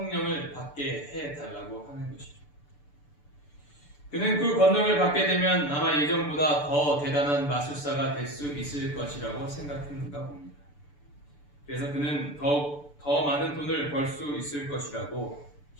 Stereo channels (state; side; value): late; right; 6.9 ms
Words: 받게 해달라고 하는 것이죠. 그는 그 권능을 받게 되면 아마 예전보다 더 대단한 마술사가 될 수 있을 것이라고 생각했는가 봅니다. 그래서 그는 더 많은 돈을 벌 수 있을 것이라고